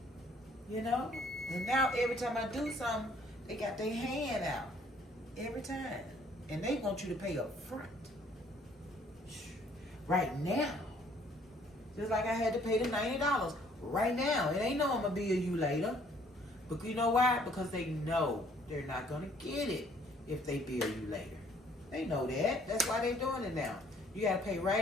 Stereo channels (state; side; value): normal; both; correlation 0.61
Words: And now every time I do something, they got their hand out. Every time. And they want you to pay up front. Right now. Just like I had to pay the $90. Right now. It ain't no I'm going to bill you later. But you know why? Because they know they're not going to get it if they bill you later. They know that. That's why they're doing it now. You got to pay